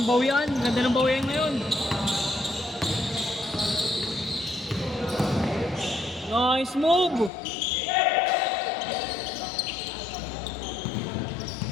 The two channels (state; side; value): drops out; right; at 7.3 s